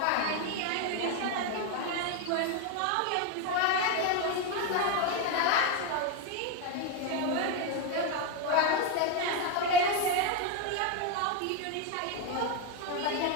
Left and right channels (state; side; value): different; both; correlation 0.02